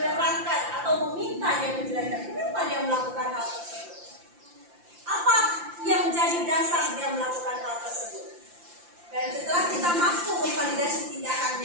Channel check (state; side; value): late; left; 5.8 ms